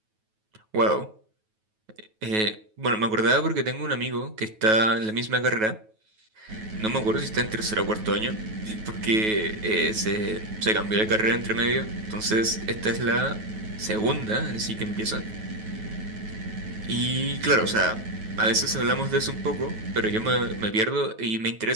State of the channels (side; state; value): left; late; 9.3 ms